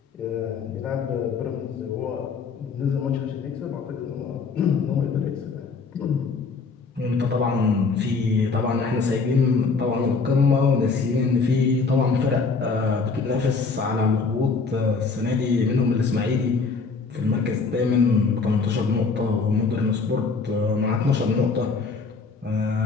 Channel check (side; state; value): right; quieter; 4.6 dB